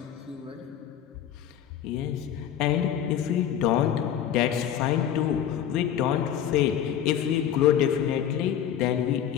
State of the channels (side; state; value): right; quieter; 9.8 dB